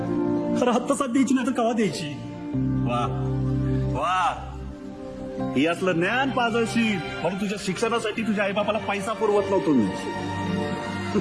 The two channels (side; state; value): both; identical; correlation 1.00